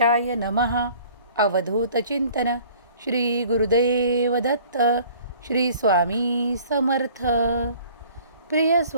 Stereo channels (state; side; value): inverted; both; correlation -0.51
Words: नमः. अवधूत चिंतन. श्री गुरुदेव दत्त. श्री स्वामी समर्थ. प्रिय